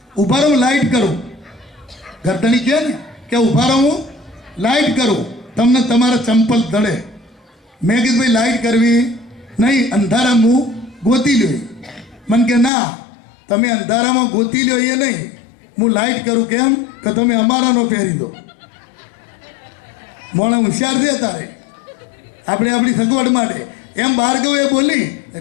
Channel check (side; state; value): right; drops out; at 12.7 s